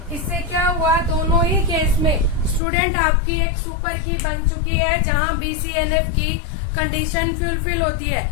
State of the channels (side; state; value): right; drops out; at 2.6 s